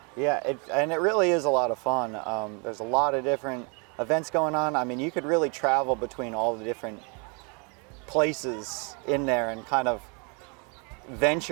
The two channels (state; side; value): quieter; left; 34.7 dB